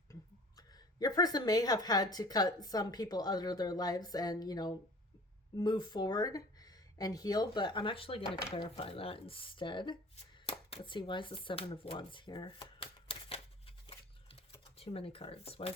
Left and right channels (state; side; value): normal; both; correlation 0.44